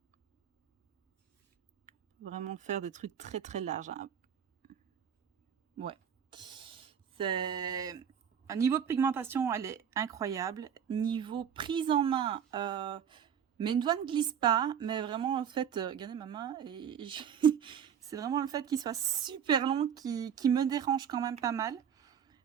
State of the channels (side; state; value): left; quieter; 8.2 dB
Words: Vraiment faire des trucs très très larges. Hein. Ouais. C'est... Un niveau de pigmentation, elle est incroyable. Niveau prise en main, mes doigts ne glissent pas, mais vraiment, en fait, regardez ma main, et c'est vraiment le fait qu'il soit super long qui me dérange quand même pas mal.